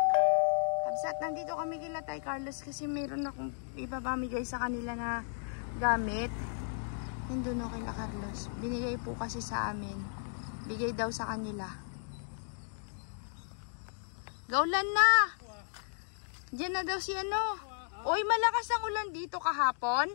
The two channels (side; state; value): right; silent; digital silence